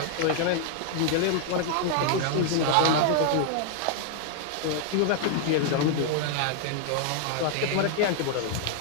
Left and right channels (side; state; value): both; different; correlation 0.00